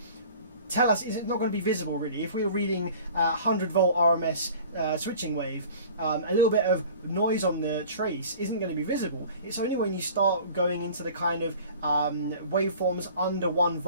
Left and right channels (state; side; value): inverted; both; correlation -0.44